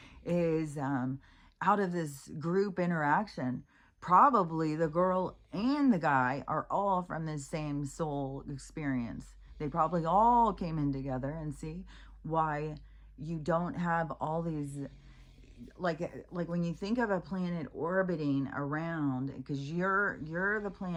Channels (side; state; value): both; identical; correlation 1.00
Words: is out of this group interaction, probably the girl and the guy are all from the same soul experience. They probably all came in together, and see why you don't have all these like when you think of a planet orbiting around, because you're the